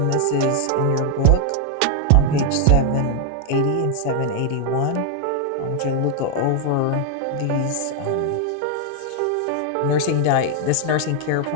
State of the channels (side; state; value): both; different; correlation 0.00